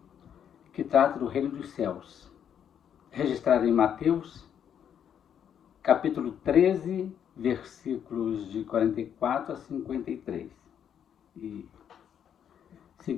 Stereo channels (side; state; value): right; quieter; 8.8 dB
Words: que trata do Reino dos Céus, registrado em Mateus, capítulo 13, versículos de 44 a 53. E